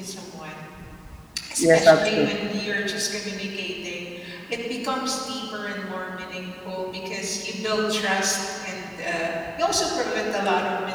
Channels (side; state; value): both; identical; correlation 1.00